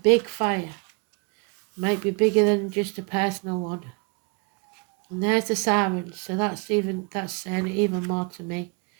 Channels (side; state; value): left; quieter; 33.4 dB